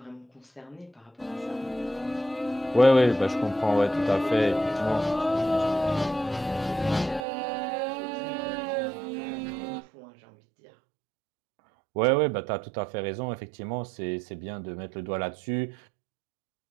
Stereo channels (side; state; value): left; drops out; at 7.2 s